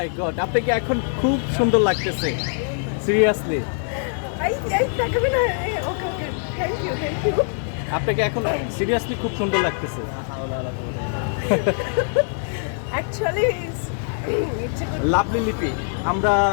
God, আপনাকে এখন খুব সুন্দর লাগতেছে, সিরিয়াসলি। আপনাকে এখন সিরিয়াসলি খুব সুন্দর লাগতেছে। লাভলি লিপি, আমরা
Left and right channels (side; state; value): right; silent; digital silence